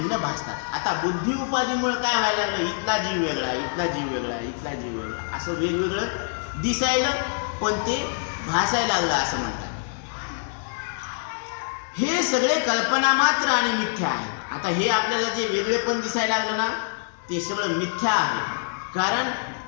भासतात. आता बुद्धी उपाधीमुळे काय व्हायला लागलं? इथला जीव वेगळा, इथला जीव वेगळा, इथला जीव वेगळा, असं वेगवेगळं दिसायला, पण ते भासायला लागलं असं म्हणतात. हे सगळे कल्पना मात्र आणि मिथ्या आहे. आता हे आपल्याला जे वेगळेपण दिसायला लागलं ना ते सगळं मिथ्या आहे. कारण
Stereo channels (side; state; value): right; silent; digital silence